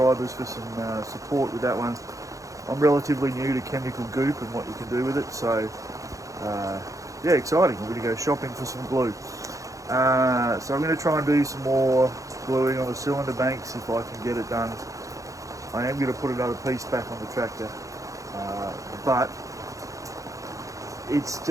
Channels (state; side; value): late; left; 0.16 ms